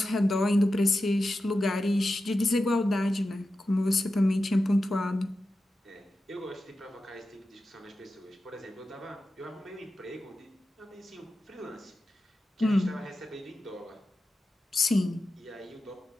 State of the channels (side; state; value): both; normal; correlation 0.92